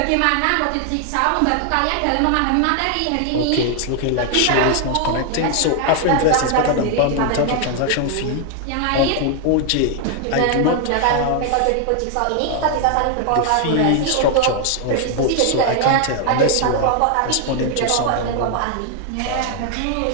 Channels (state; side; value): different; both; correlation 0.00